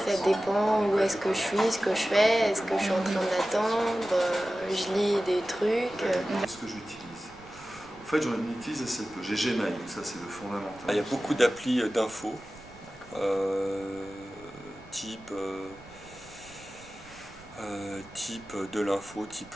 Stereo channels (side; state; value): right; noise; rumble, 22 dB below the sound